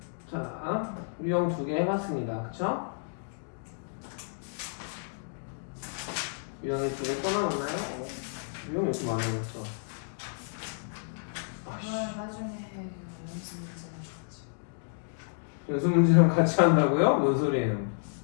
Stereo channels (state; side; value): silent; right; digital silence